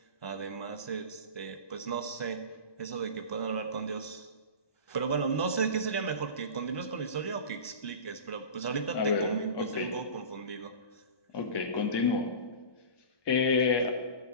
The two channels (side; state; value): right; late; 1.2 ms